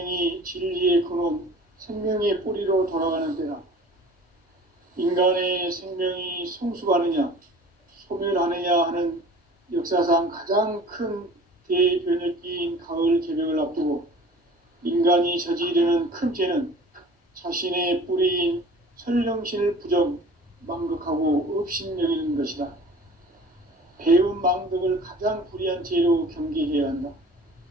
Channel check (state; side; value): normal; both; correlation 0.45